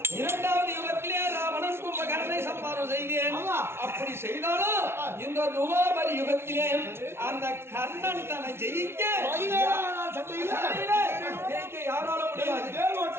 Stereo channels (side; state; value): left; late; 0.12 ms